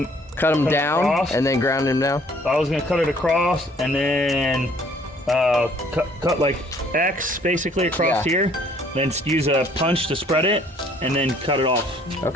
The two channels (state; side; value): normal; both; correlation 0.60